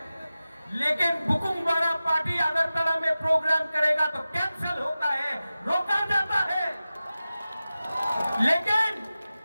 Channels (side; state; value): both; inverted; correlation -0.95